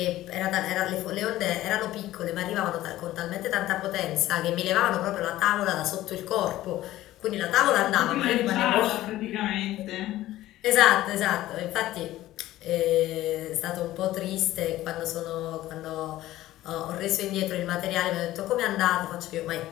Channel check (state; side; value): quieter; right; 15.2 dB